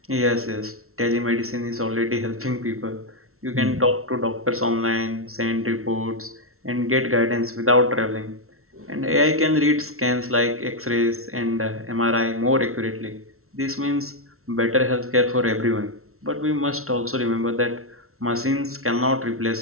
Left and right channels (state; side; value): late; left; 0.63 ms